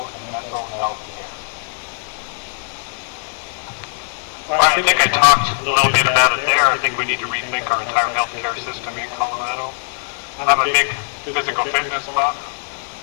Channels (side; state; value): right; silent; digital silence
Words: and mental health care? Well, I think I talked a little bit about it there. I think we need to rethink our entire healthcare system in Colorado. I'm a big physical fitness buff.